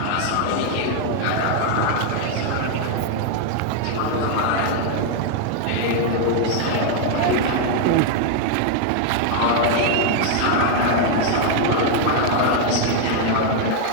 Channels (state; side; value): different; both; correlation 0.00